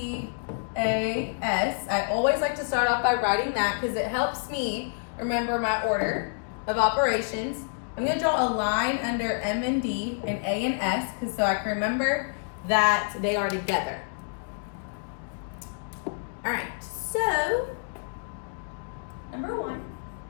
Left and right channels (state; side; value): silent; right; digital silence